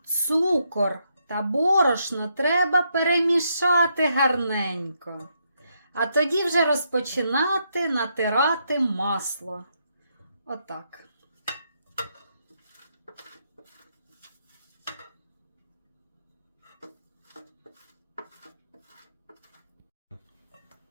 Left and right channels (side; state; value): both; inverted; correlation -0.78